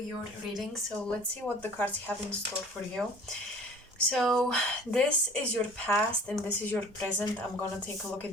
your reading. So let's see what the cards have in store for you. So this is your past and this is your present. I'm gonna take a look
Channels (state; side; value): normal; both; correlation 0.47